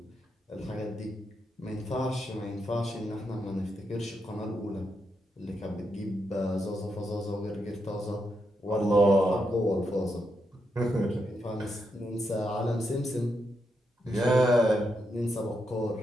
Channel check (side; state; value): both; normal; correlation 0.83